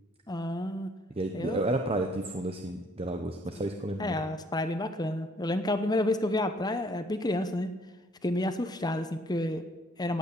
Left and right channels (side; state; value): both; normal; correlation 0.63